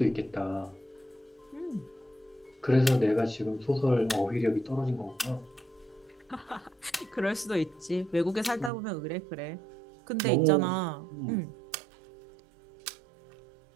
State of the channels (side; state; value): left; drops out; at 8.7 s